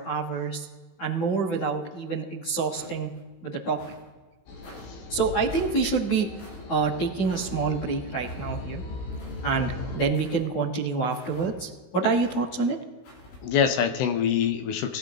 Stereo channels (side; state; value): right; late; 16 ms